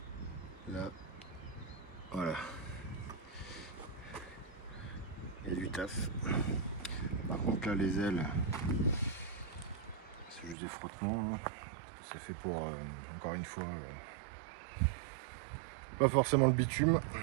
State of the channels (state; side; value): drops out; left; at 10.6 s